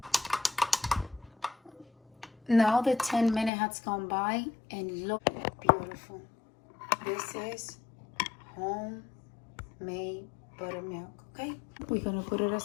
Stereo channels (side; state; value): right; drops out; at 3.5 s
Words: Now the 10 minutes has gone by and look beautiful. This is homemade buttermilk, okay? We're gonna put it